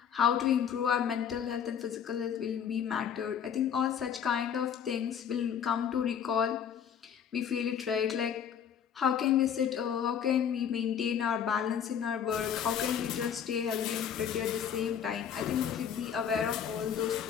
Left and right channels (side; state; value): right; quieter; 8.2 dB